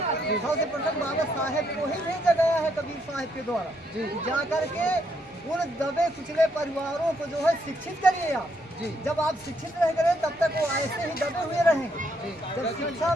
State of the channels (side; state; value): both; normal; correlation 0.74